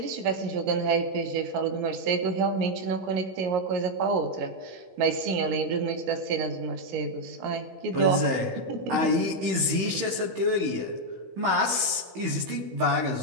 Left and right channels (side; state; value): left; late; 16 ms